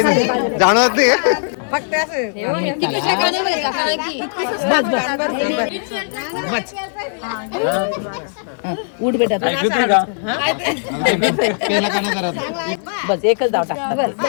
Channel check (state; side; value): silent; right; digital silence